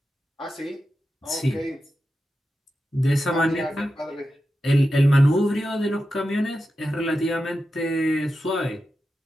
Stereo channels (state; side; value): normal; both; correlation 0.91